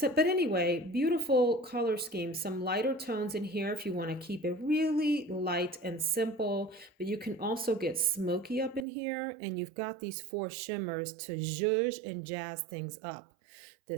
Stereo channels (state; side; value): drops out; left; at 8.8 s